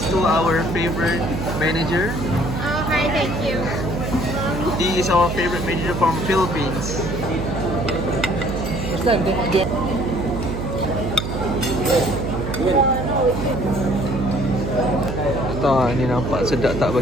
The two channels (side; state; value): right; noise; hum, 4 dB below the sound